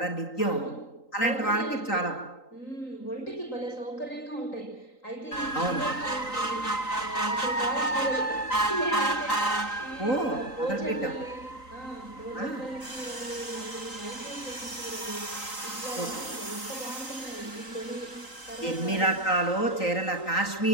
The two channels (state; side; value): late; right; 3.9 ms